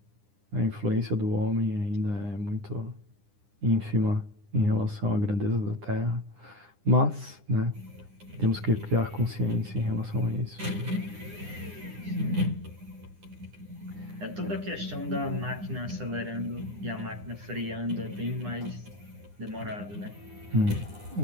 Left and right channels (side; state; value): left; late; 9.9 ms